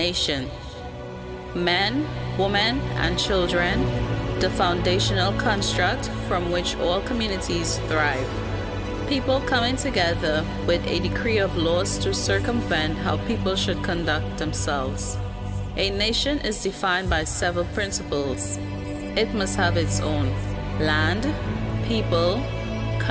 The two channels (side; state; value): both; identical; correlation 1.00